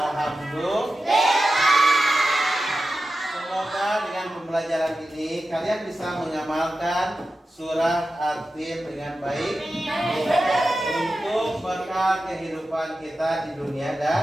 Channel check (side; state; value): both; normal; correlation 0.92